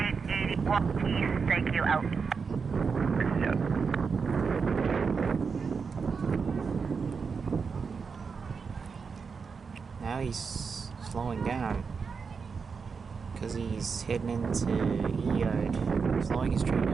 East, thank you, out. Yeah. Now he's slowing down because he's heading into E-Yard. Slowing his train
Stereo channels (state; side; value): quieter; left; 5.4 dB